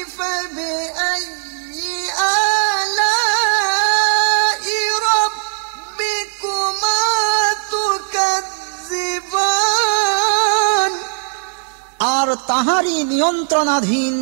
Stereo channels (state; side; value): silent; left; digital silence